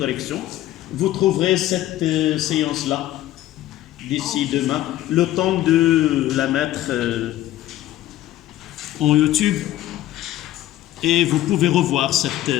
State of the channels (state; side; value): quieter; right; 14.2 dB